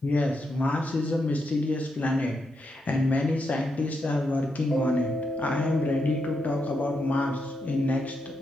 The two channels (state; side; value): normal; both; correlation 0.83